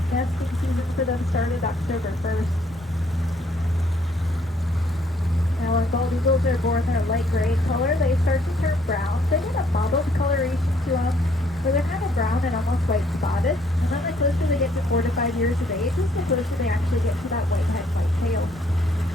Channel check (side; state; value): both; normal; correlation 0.66